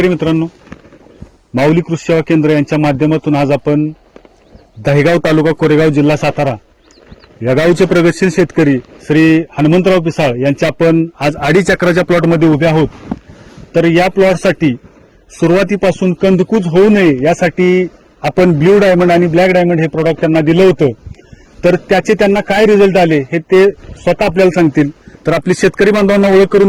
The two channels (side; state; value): both; identical; correlation 1.00